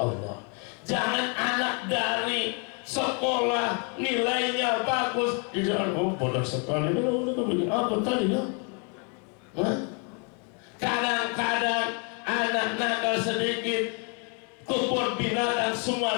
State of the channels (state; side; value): quieter; right; 36.5 dB